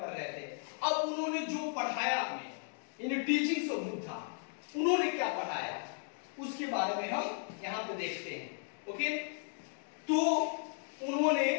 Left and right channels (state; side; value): silent; right; 54 dB below the other